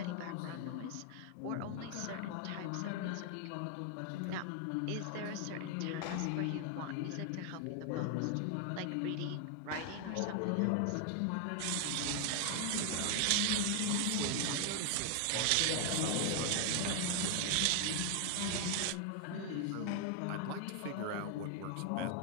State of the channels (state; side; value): different; both; correlation 0.00